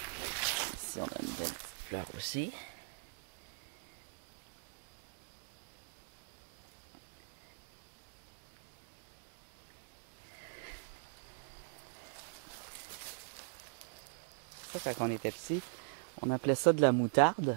Ici, on a une belle petite fleur aussi. Ça, quand on était petit, on appelait ça de la moutarde.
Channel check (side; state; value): left; silent; digital silence